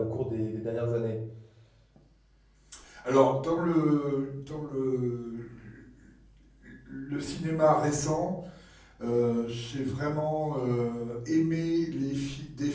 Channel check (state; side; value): identical; both; correlation 1.00